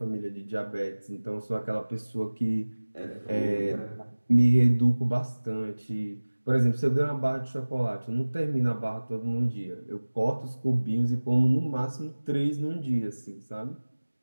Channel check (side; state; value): both; inverted; correlation -1.00